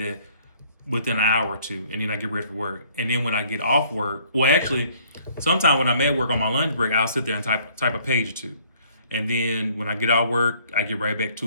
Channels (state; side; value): inverted; both; correlation -0.60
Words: within an hour or two, and then I get ready for work. And then when I get off work, well, actually, sometimes when I'm at work on my lunch break, I'll sit there and type a page or two. And then when I get off work, I get right back